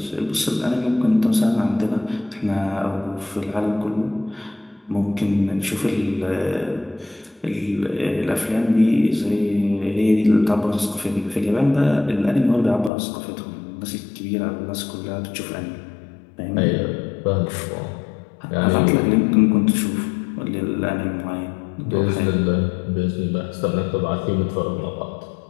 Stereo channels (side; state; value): right; drops out; at 12.9 s